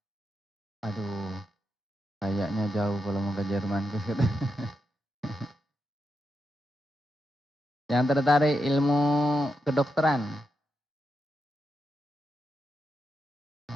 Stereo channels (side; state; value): both; normal; correlation 0.85